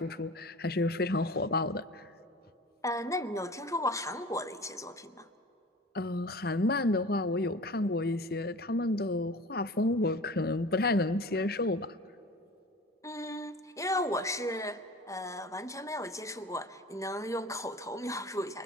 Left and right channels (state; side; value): normal; both; correlation 0.39